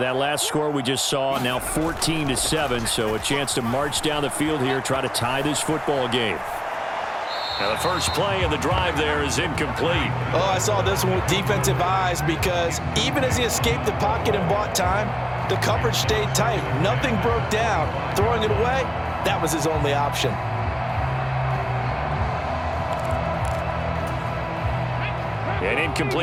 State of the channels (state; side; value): identical; both; correlation 1.00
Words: last score we just saw, now 14-7, so a chance to march down the field here, try to tie this football game. Now the first play of the drive there is incomplete. Oh, I saw this one with defensive eyes because even as he escaped the pocket and bought time, the coverage stayed tight. Nothing broke down. Throwing it away, that was his only option. An